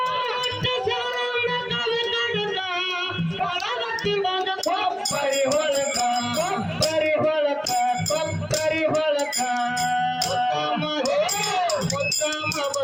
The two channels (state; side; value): identical; both; correlation 1.00